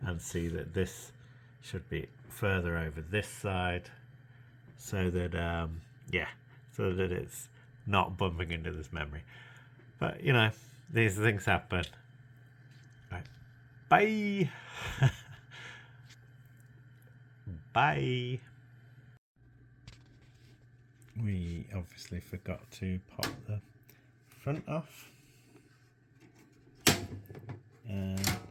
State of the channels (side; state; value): both; identical; correlation 1.00